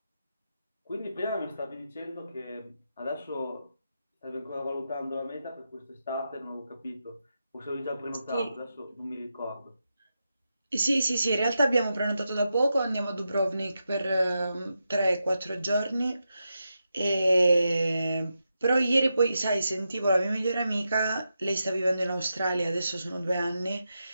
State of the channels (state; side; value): inverted; both; correlation -0.87